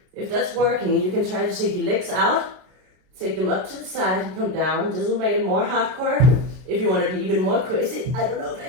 If that's working, you can try to take your legs out, take them up to the side and come down. This will make it more hardcore. If you want to be even more crazy, I don't know if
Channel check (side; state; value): left; late; 32 ms